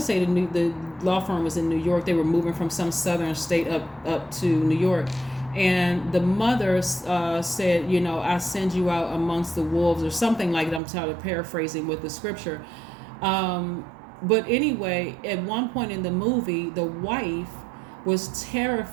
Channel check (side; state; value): left; drops out; at 10.8 s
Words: the law firm was in New York. They were moving from some southern state up to New York. And the mother said, I send you out amongst the wolves, or something like that. I'm paraphrasing with the scripture. But anyway, at one point in the movie, the wife was